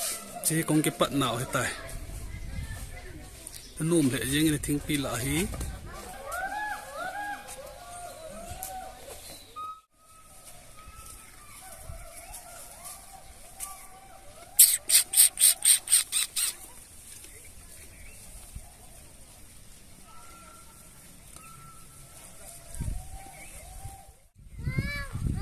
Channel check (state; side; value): identical; both; correlation 1.00